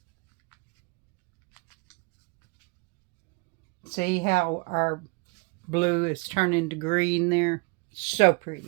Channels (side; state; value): left; quieter; 31.3 dB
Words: See how our blue is turning to green there? So